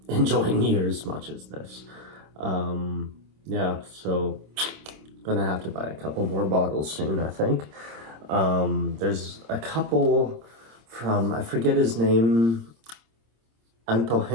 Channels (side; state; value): left; late; 26 ms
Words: enjoy near as much as this. Yeah, so gonna have to buy a couple more bottles soon, I think. There's a couple from, I forget his name,